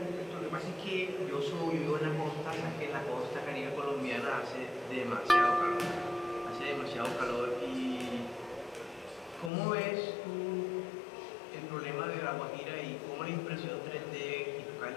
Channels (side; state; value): right; drops out; at 9.5 s